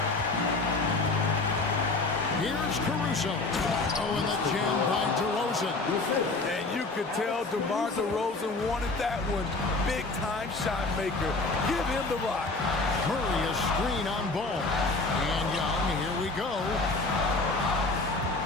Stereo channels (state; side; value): quieter; right; 3.4 dB